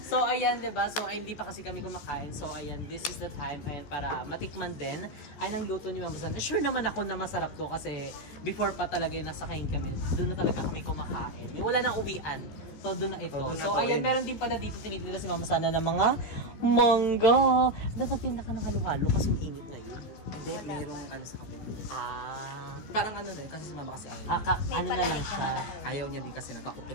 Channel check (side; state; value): right; late; 14 ms